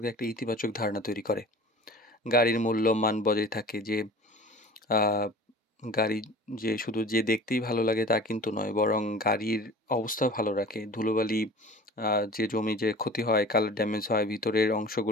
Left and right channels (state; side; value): normal; both; correlation 0.41